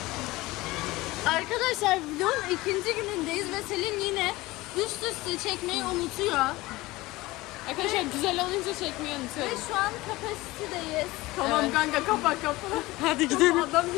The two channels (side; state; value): right; quieter; 19.8 dB